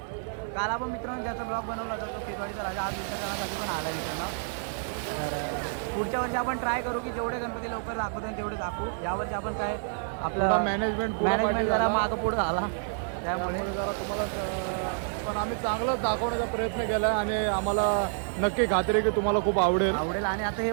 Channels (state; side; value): silent; left; 59 dB below the other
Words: काल आपण मित्रांनो ज्याचा ब्लॉग बनवला होता तो खेतवाडीचा राजा आज विसर्जनासाठी पण आला मित्रांनो. तर पुढच्या वर्षी आपण ट्राय करू की जेवढे गणपती लवकर दाखवतो तेवढे दाखवू. यावर्षी आपण काय आपलं मॅनेजमेंट जरा मागं पुढं झाला, त्यामुळे पण आम्ही चांगलाच दाखवण्याचा प्रयत्न केला आणि आम्हाला नक्की खात्री आहे की तुम्हाला खूप आवडेल. आवडेल. आणि आता हे